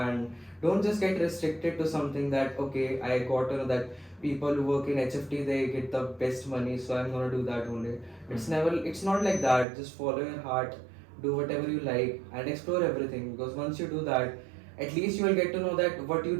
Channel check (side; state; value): left; drops out; at 9.7 s